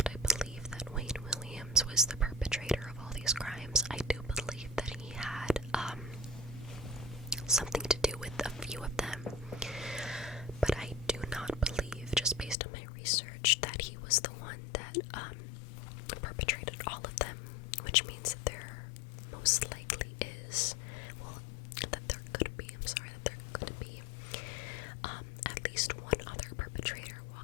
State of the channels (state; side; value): drops out; right; at 12.6 s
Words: I believe that Wayne Williams was the perpetrator of all these crimes. I do believe that he had something to do with a few of them, but I do not believe, just based on my research, that he was the one that perpetrated all of them, which means that there most likely is, that there could be at least one other perpetrator